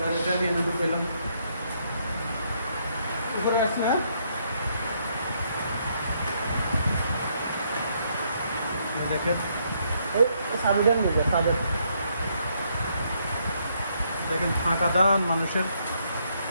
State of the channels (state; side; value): inverted; both; correlation -0.73